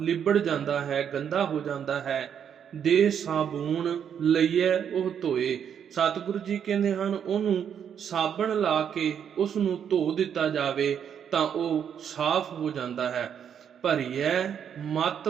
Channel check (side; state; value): left; quieter; 8.3 dB